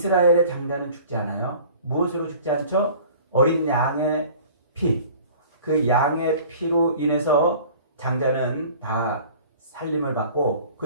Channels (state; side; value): inverted; both; correlation -0.47